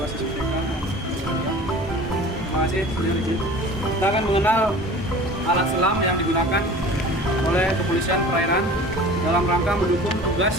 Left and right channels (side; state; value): both; normal; correlation 0.42